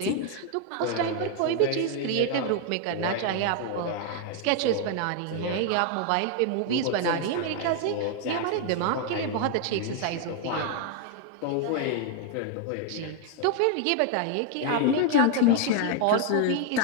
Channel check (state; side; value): different; both; correlation 0.00